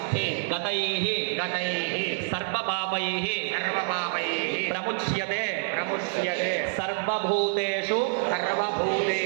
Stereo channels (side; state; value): left; silent; digital silence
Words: గతైః గతైః సర్వపాపైః సర్వపాపైః ప్రముచ్యతే ప్రముచ్యతే సర్వభూతేషు